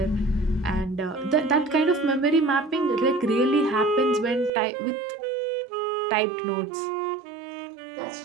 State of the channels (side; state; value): left; drops out; at 4.5 s